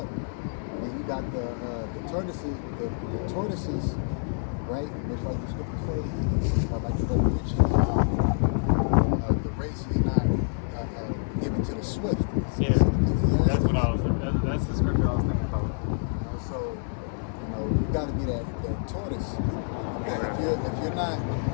And you got the tortoises, right? Just like the scripture says, like the Revelation, the race is not given to the swift. Yeah, that's what I was. That's the scripture I was thinking about. So, you know, you got to be that tortoise. Because if you're not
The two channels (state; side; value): silent; right; 60 dB below the other